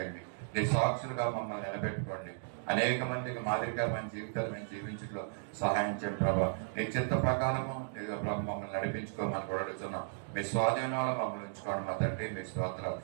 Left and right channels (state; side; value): silent; left; digital silence